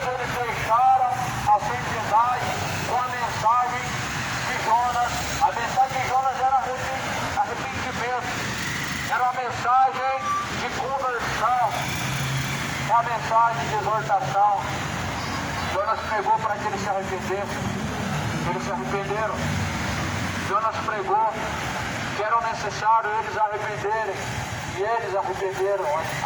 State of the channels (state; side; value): identical; both; correlation 1.00